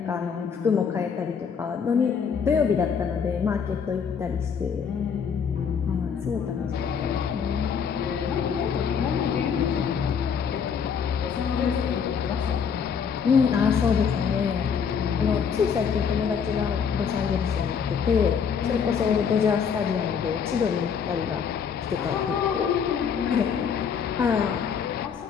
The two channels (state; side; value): quieter; right; 6.8 dB